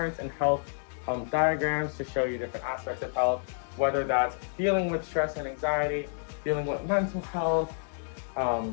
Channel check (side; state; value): right; silent; 58 dB below the other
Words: and health diagrams to show you different aspects of health, whether that's dealing with stress and anxiety, dealing with mental health,